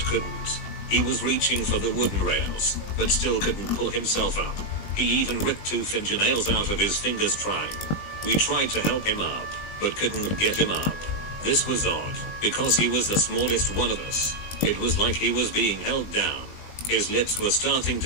couldn't. He was reaching for the wooden rails, but still couldn't pull himself up. He even ripped 2 fingernails out of his fingers trying. We tried to help him up, but couldn't get him up. This was odd, because he was the smallest one of us. It was like he was being held down. His lips were starting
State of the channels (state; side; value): late; right; 20 ms